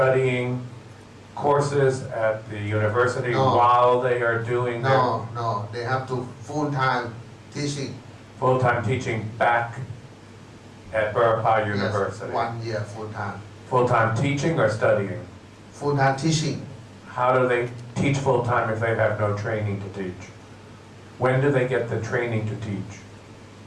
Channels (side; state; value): both; identical; correlation 1.00